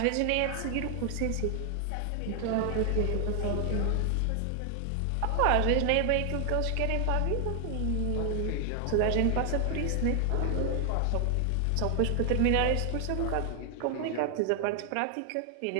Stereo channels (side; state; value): both; different; correlation 0.00